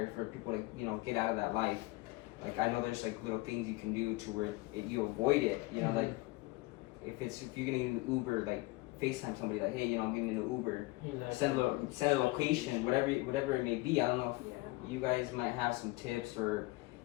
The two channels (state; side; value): quieter; right; 21.4 dB